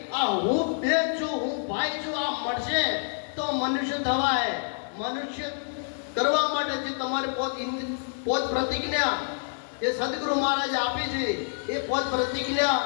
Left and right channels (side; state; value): right; silent; digital silence